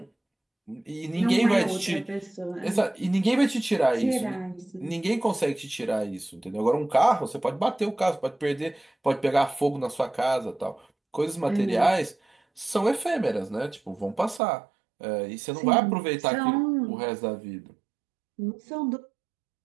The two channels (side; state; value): left; drops out; at 14.4 s